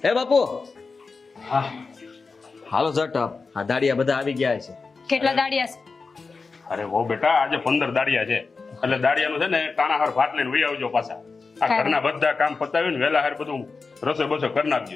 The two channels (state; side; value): quieter; right; 4.4 dB